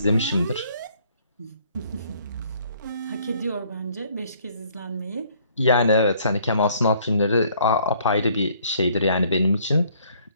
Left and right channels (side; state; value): both; inverted; correlation -0.62